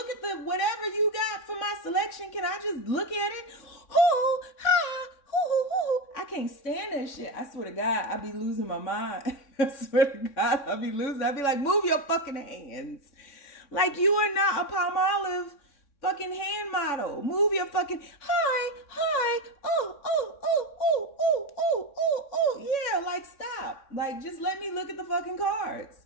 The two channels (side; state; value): right; late; 3.6 ms